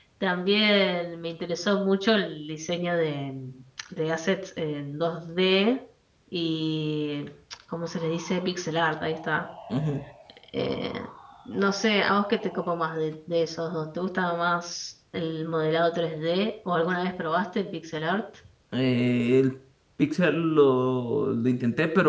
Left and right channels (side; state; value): both; identical; correlation 1.00